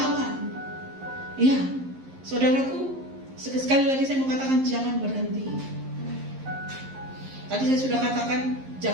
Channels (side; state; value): left; late; 11 ms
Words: Ya, saudaraku, sekali lagi saya mau katakan jangan berhenti. Tadi saya sudah katakan